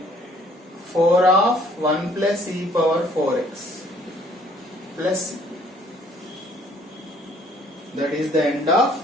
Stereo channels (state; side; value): normal; both; correlation 0.60